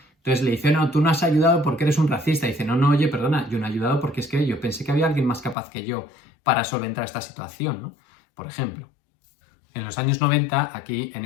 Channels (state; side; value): drops out; right; at 5.6 s